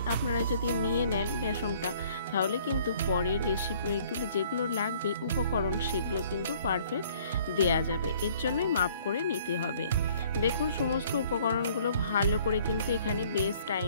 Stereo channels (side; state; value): both; inverted; correlation -0.58